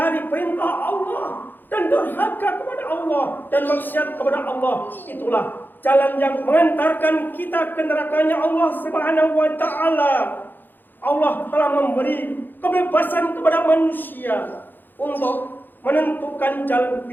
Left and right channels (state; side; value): late; right; 0.091 ms